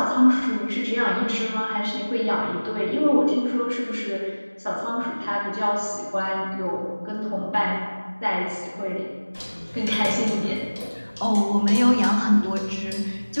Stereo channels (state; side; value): inverted; both; correlation -1.00